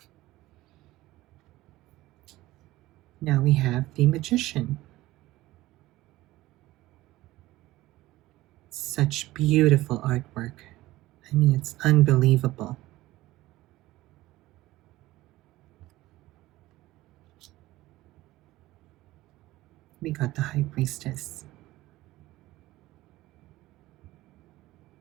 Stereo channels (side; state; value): left; quieter; 17.3 dB